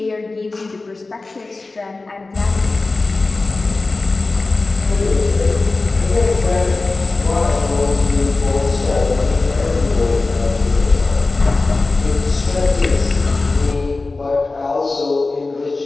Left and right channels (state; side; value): quieter; right; 3.5 dB